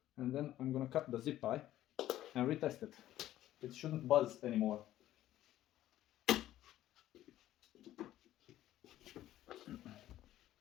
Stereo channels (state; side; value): quieter; right; 13.5 dB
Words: And then I'm gonna cut the zip tie and retest it. It shouldn't buzz anymore.